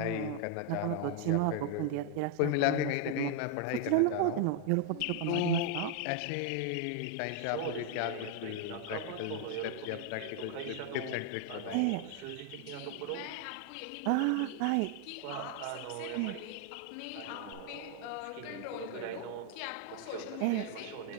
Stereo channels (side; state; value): both; different; correlation 0.00